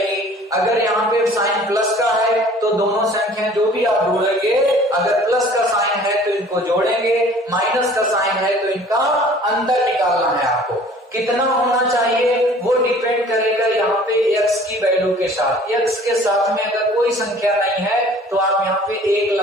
अगर यहाँ पे साइन प्लस का है तो दोनों संख्याएं जो भी आप ढूंढेंगे, अगर प्लस का साइन है तो इनको जोड़ेंगे, माइनस का साइन है तो इनका अंतर निकालना है आपको। कितना होना चाहिए वो डिपेंड करेगा यहाँ पे x की वैल्यू के साथ। x के साथ में अगर कोई संख्या नहीं है तो आप यहाँ पे 1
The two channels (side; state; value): both; normal; correlation 0.50